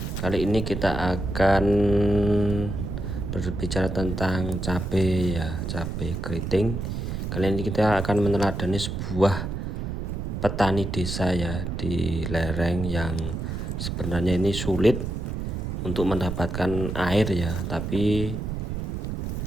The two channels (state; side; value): noise; right; rumble, 4 dB below the sound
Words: Kali ini kita akan berbicara tentang cabai ya, cabai keriting. Kali ini kita akan meneladani sebuah petani desa ya di lereng yang sebenarnya ini sulit untuk mendapatkan air ya, tapi